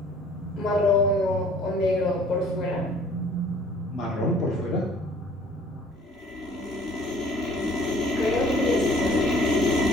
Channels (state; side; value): normal; both; correlation 0.54